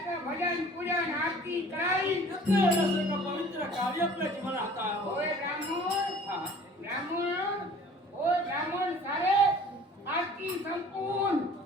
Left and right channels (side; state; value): both; normal; correlation 0.49